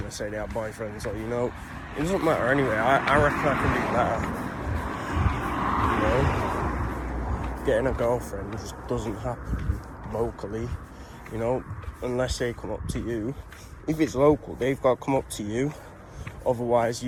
say they have boyfriends, or you know, it doesn't matter anyway. I reckon I can do better. You know, getting a girlfriend just doesn't happen locally, you know, unless they come up to you. If it's local, they've got to come up to you. Otherwise,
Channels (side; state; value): both; identical; correlation 1.00